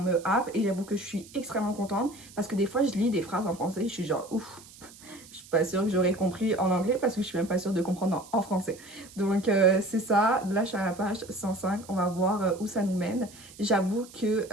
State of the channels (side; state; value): right; noise; hiss, 20 dB below the sound